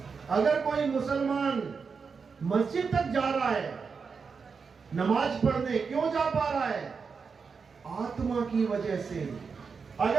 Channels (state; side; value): quieter; left; 5.4 dB